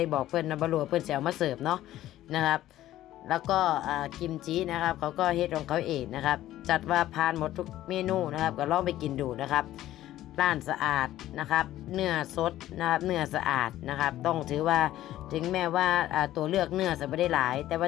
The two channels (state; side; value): quieter; right; 13.9 dB